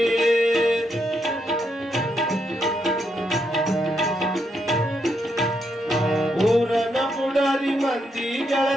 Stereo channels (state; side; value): normal; both; correlation 0.79